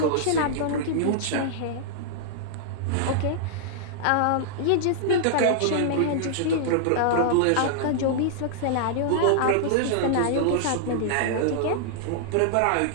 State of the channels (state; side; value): different; both; correlation -0.01